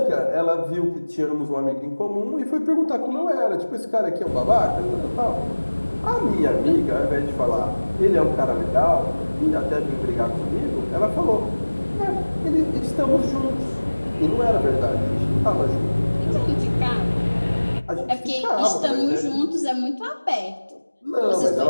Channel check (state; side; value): inverted; both; correlation -1.00